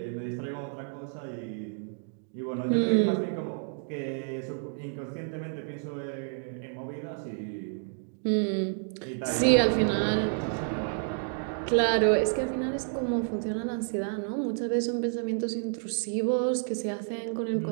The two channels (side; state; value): left; silent; 58 dB below the other